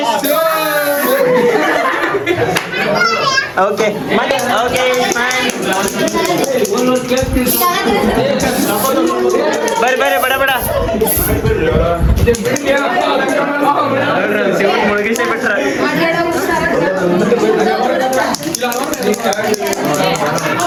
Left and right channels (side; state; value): both; identical; correlation 1.00